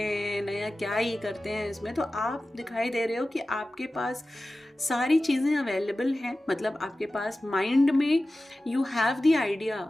नया क्या ही करते हैं इसमें। तो आप दिखाई दे रहे हो कि आपके पास सारी चीज़ें अवेलेबल हैं, मतलब आपके पास माइंड में यू हैव द आइडिया,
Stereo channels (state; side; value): normal; both; correlation 0.96